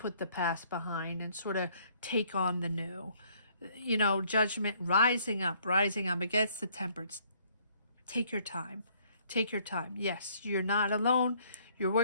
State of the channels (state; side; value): inverted; both; correlation -0.63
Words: the past behind and sort of take on the new. You know, judgment, rising up against the temperance. Take your time. Take your time. Yes, you're not alone. You're